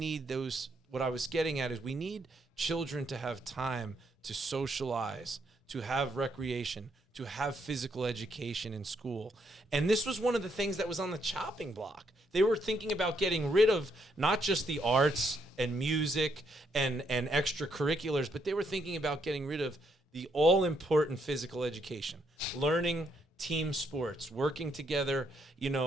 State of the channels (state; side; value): normal; both; correlation 0.75